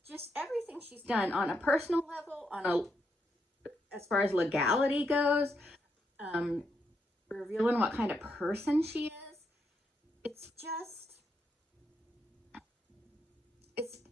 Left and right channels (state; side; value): normal; both; correlation 0.80